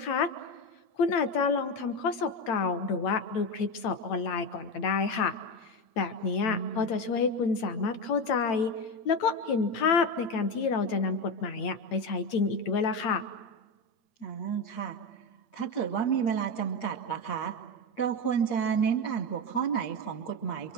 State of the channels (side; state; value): right; late; 9.0 ms